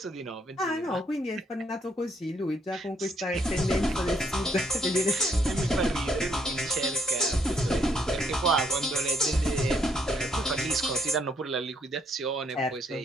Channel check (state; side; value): normal; both; correlation 0.69